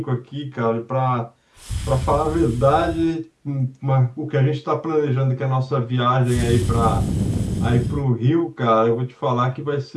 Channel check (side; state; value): both; identical; correlation 1.00